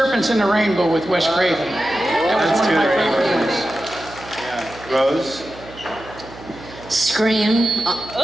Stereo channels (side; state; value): right; noise; hum, 18 dB below the sound